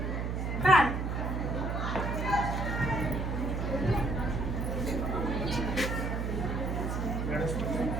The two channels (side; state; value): right; noise; hum, 1 dB below the sound